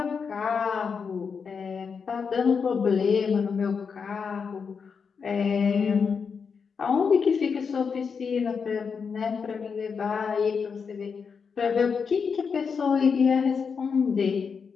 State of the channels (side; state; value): right; quieter; 5.9 dB